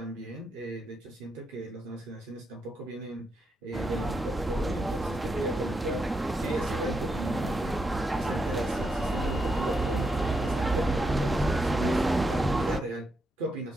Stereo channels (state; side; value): normal; both; correlation 0.82